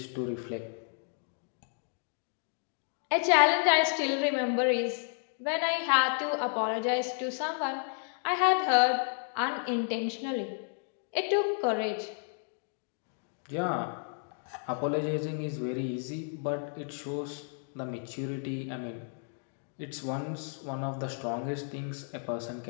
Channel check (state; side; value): silent; right; 56 dB below the other